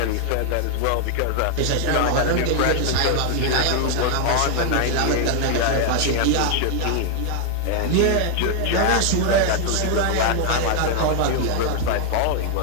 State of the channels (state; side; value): different; both; correlation 0.00